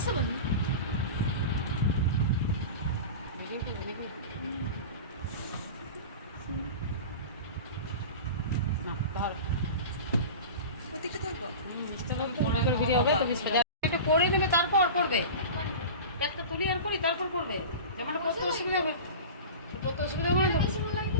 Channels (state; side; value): inverted; both; correlation -0.31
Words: बन একটু করে নেবে তারপর করবে একটা তুলি আর করি তারপর করবে যেমন করতে অসুবিধা হবে করতে অসুবিধা হবে না